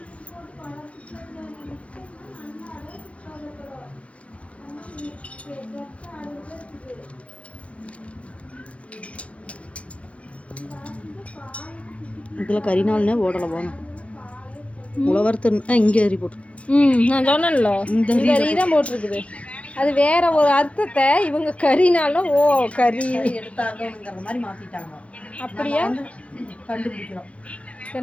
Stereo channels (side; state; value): right; late; 0.063 ms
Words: இதில் கறிநாள்னே ஓடலை போகணும். உழவர்த்து இங்கே ரீ போட்டு. நான் சொன்னேன்ல, இந்த ரீ தான் போட்டிருக்குது. அது வேற ஒரு அர்த்தத்தை இவங்க கறினாலும் ஓ கறி எடுத்தாங்கிற மாதிரி மாற்றிட்டாங்க. அப்படியா? கண்டுபிடிக்கிறோம்.